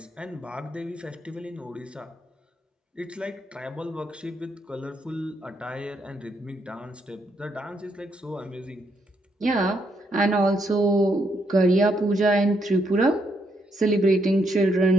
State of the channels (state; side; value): normal; both; correlation 0.76